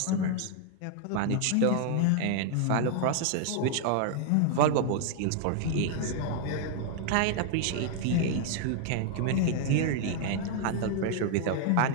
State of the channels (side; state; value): both; different; correlation 0.00